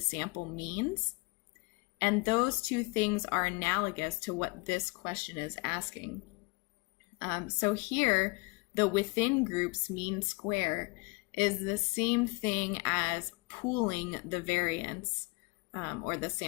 means. And those two things are analogous to what this question is asking. So here, the within groups mean square is the same thing as pooling the variance or the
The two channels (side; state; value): right; quieter; 27.4 dB